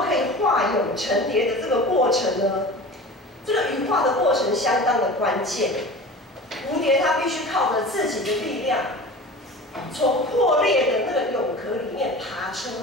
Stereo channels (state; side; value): normal; both; correlation 0.36